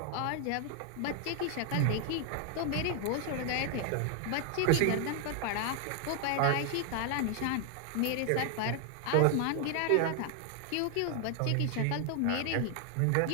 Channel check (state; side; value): different; both; correlation 0.00